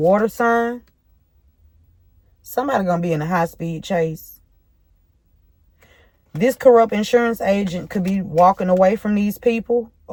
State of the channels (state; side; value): identical; both; correlation 1.00